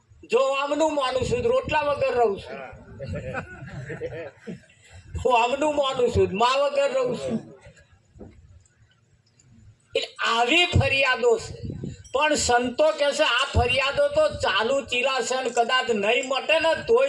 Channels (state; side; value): identical; both; correlation 1.00